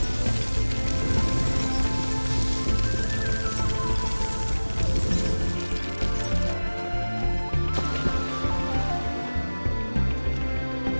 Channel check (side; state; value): both; inverted; correlation -1.00